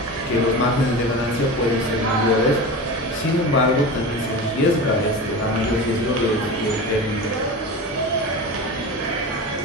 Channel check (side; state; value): both; normal; correlation 0.28